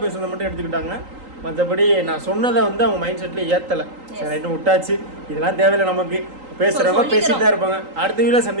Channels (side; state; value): left; late; 3.8 ms